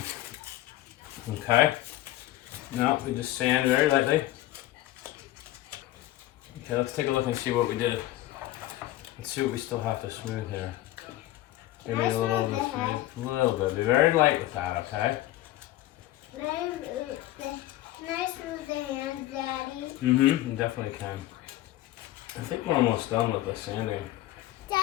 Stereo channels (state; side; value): quieter; right; 15.6 dB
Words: Okay. Now we just sand very lightly. Okay, let's take a look and see what we did. Let's see what we still have to smooth here. Maybe a little bit smooth. A little bit. Be very light with that, okay? Can I smooth the hands, Daddy? Mm-hmm. You definitely can. I think we're almost done with the sanding.